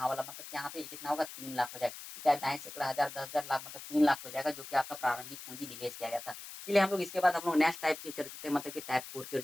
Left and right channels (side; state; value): left; noise; hiss, 12 dB below the sound